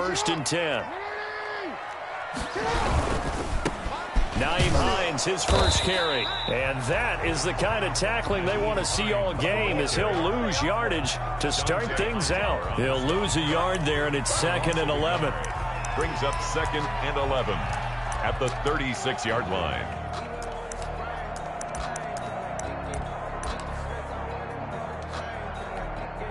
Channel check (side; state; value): both; identical; correlation 1.00